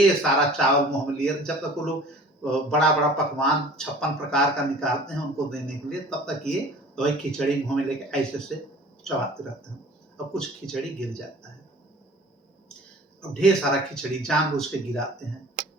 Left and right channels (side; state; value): both; normal; correlation 0.46